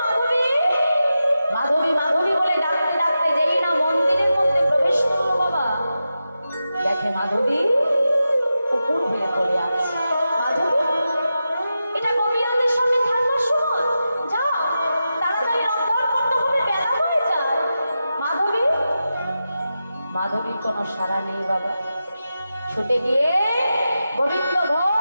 মাধবী? মাধবী মাধবী বলে ডাকতে ডাকতে যেই না মন্দিরের মধ্যে প্রবেশ করলো বাবা, দেখে মাধবী উপর হয়ে পড়ে আছে। মাধবী, এটা গোপীনাথের সামনে থাকবার সময়, যাও তাড়াতাড়ি রন্ধন করতে হবে, বেলা হয়ে যায়। মাধবী, মাধবীর কোনো সাড়া নেই বাবা। ছুটে গিয়ে গোবিন্দ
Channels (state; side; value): inverted; both; correlation -0.90